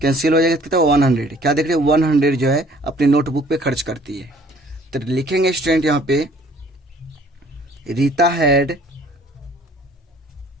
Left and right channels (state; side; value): normal; both; correlation 0.56